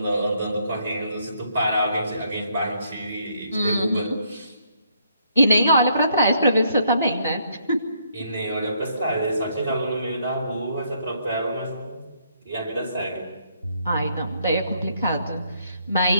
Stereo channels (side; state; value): both; inverted; correlation -0.71